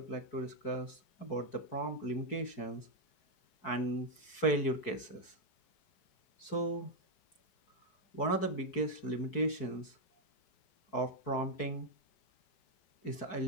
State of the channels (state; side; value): late; right; 4.6 ms